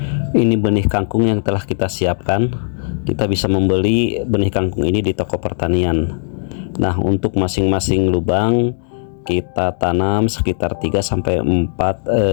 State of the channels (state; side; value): silent; right; digital silence